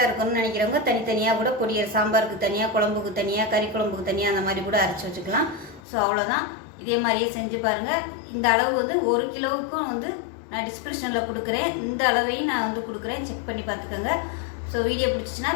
இருக்கணும்னு நினைக்கிறவங்க தனித்தனியாக கூட பொடியை சாம்பாருக்கு தனியாக, குழம்புக்கு தனியாக, கறி குழம்புக்கு தனியாக அந்த மாதிரி கூட அரைச்சி வச்சுக்கலாம். ஸோ அவ்வளோதான். இதே மாதிரியே செஞ்சு பாருங்கள். இந்த அளவு வந்து 1 கிலோவுக்கும் வந்து நான் டிஸ்கிரிப்ஷனில் கொடுக்குறேன். இந்த அளவையும் நான் வந்து கொடுக்குறேன், செக் பண்ணி பார்த்துக்கோங்க. ஸோ வீடியோ பிடிச்சிச்சின்னா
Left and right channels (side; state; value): right; drops out; at 5.8 s